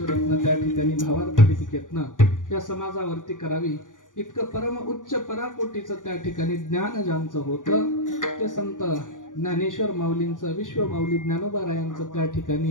त्या ठिकाणी भावार्थ दीपिकेतनं या समाजावरती करावी. इतकं परम उच्च पराकोटीचं त्या ठिकाणी ज्ञान ज्यांचं होतं ते संत ज्ञानेश्वर माऊलींचं, विश्व माऊली ज्ञानोबारायांचं त्या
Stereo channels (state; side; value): late; right; 0.88 ms